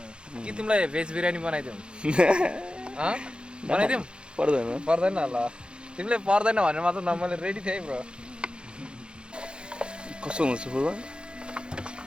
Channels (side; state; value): left; late; 0.053 ms